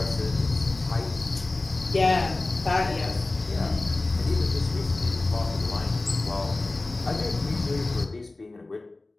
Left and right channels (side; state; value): right; quieter; 3.1 dB